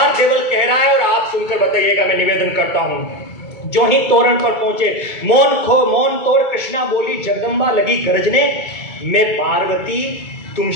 देवल कह रहा है और आप सुनकर बताइएगा, मैं निवेदन करता हूं। जो ही तोरण पर पहुंचे मौन तोड़ कृष्णा बोली जगदम्बा लगी गरजने, मैं पार्वती तुम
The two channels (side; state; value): right; late; 2.3 ms